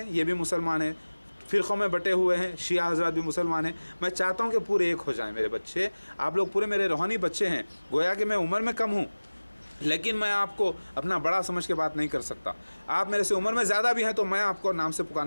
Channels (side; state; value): both; inverted; correlation -1.00